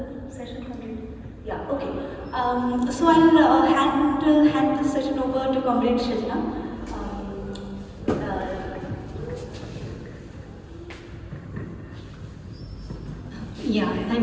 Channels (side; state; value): both; identical; correlation 1.00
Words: session complete. Yeah, okay. So I'll hand the session over to Comrade Sinha. Yeah,